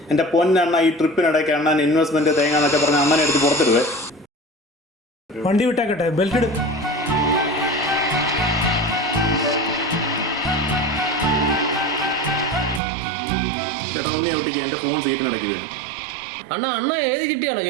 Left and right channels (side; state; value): left; drops out; at 12.8 s